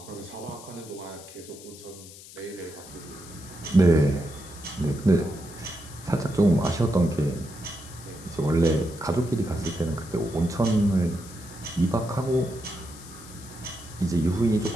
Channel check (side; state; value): left; noise; hiss, 17 dB below the sound